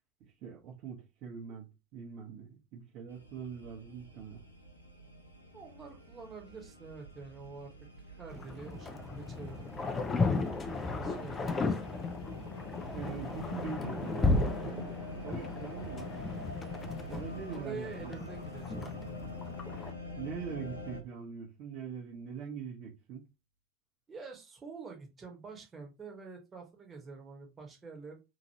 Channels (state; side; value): normal; both; correlation 0.47